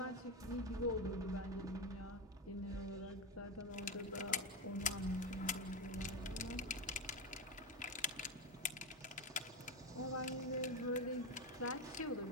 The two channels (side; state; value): both; normal; correlation 0.14